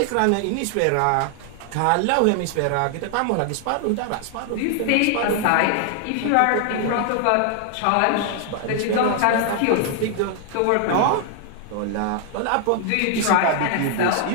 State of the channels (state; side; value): different; both; correlation 0.00